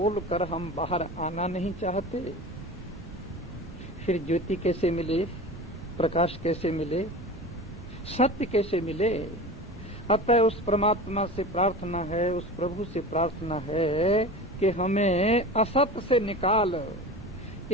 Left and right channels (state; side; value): normal; both; correlation 0.33